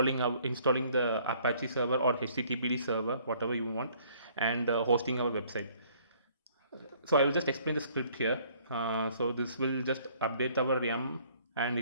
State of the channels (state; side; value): inverted; both; correlation -0.60